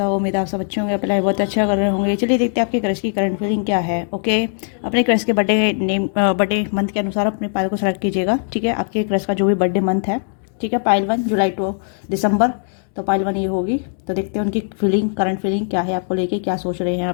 उम्मीद है आप सब अच्छे होंगे, अपना बहुत अच्छा कर रहे होंगे। चलिए देखते हैं आपके क्रश की करंट फीलिंग क्या है। ओके, अपने क्रश के बर्थडे मंथ के अनुसार अपने पायल को सेलेक्ट कीजिएगा। ठीक है, आपके क्रश का जो भी बर्थडे मंथ है, ठीक है, पायल 1 जुलाई टू दिसंबर, तो पायल 1 ये होगी। तो देखते हैं उनकी फीलिंग, करंट फीलिंग क्या है, आपको लेके क्या सोच रहे हैं,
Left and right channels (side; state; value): right; silent; digital silence